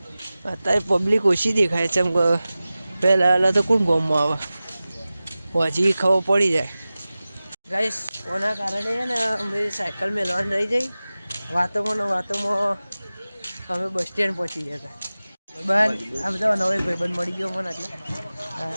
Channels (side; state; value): both; inverted; correlation -0.96